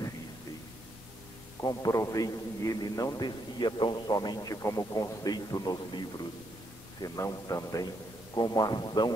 Comprovei que ele não descia tão somente como conceito nos livros, senão também como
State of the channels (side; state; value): both; normal; correlation 0.77